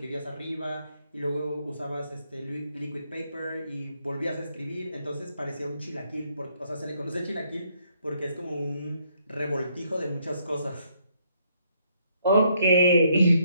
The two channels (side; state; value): both; inverted; correlation -0.71